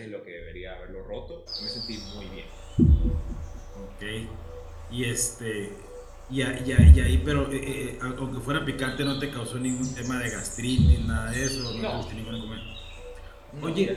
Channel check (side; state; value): both; identical; correlation 1.00